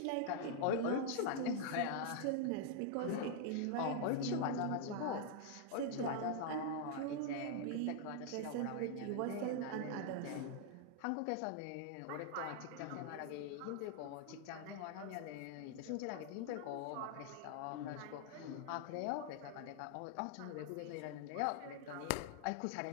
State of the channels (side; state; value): both; different; correlation 0.00